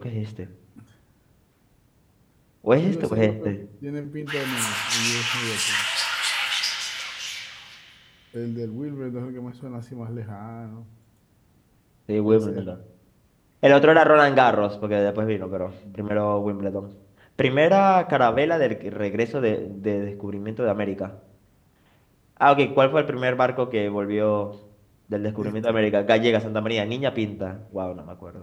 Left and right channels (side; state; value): both; identical; correlation 1.00